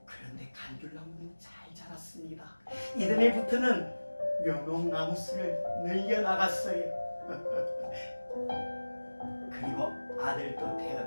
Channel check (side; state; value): both; inverted; correlation -1.00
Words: 그런데 감귤나무는 잘 자랐습니다. 이듬해부터는 묘목나무수를 늘려나갔어요. 그리고 아들도